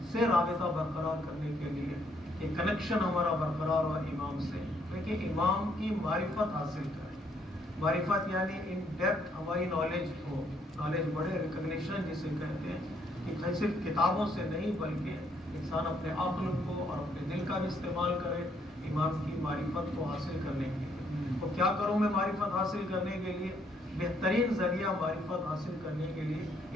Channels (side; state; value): both; normal; correlation 0.70